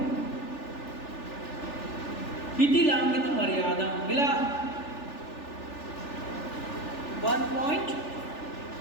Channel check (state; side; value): late; right; 3.4 ms